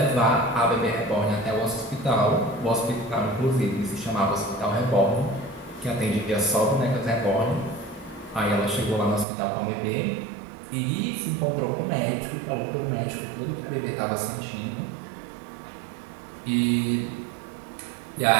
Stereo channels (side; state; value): left; drops out; at 9.2 s